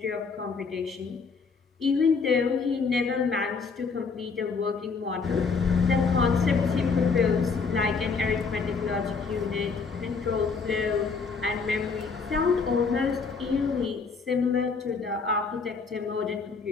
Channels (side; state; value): right; quieter; 4.9 dB